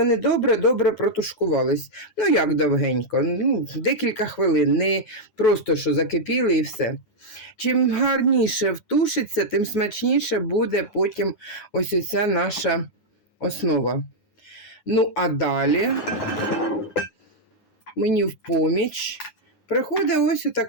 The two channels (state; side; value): late; right; 9.2 ms